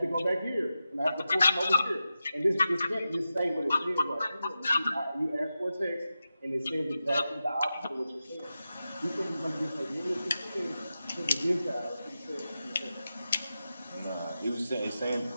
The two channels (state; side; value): inverted; both; correlation -0.91